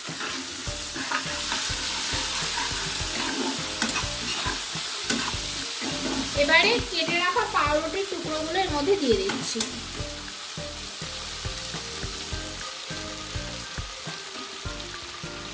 এবারে কেটে রাখা পাউরুটির টুকরোগুলো এর মধ্যে দিয়ে দিচ্ছি।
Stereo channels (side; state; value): both; identical; correlation 1.00